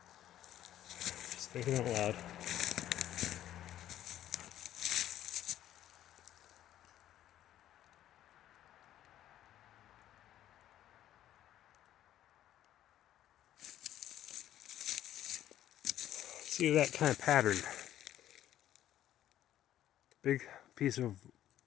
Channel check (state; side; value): quieter; right; 12.2 dB